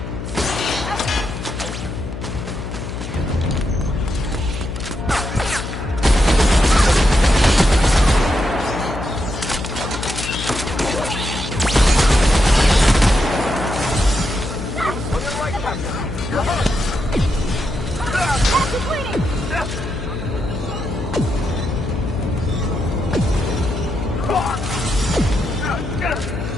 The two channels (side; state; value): left; noise; hum, 7 dB below the sound